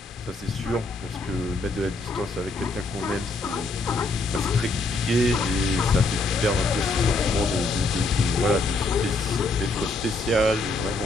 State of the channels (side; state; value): right; quieter; 3.2 dB